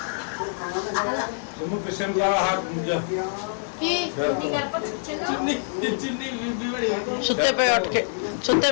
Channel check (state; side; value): silent; right; digital silence